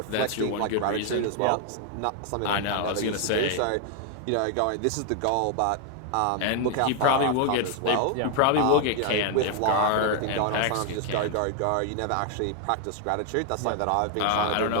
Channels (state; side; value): different; both; correlation 0.00